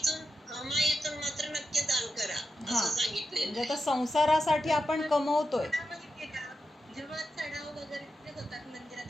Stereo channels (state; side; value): normal; both; correlation 0.89